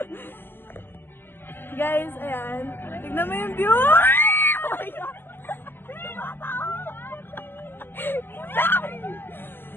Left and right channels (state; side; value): late; right; 0.10 ms